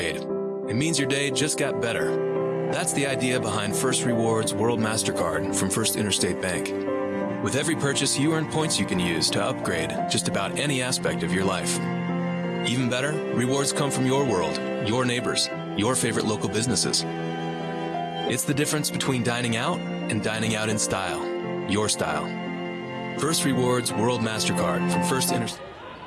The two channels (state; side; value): identical; both; correlation 1.00